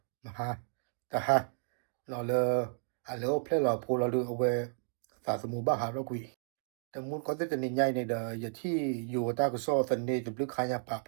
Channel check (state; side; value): silent; left; digital silence